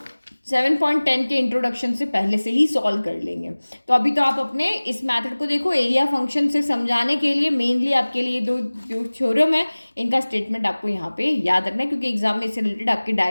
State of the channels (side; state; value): both; inverted; correlation -1.00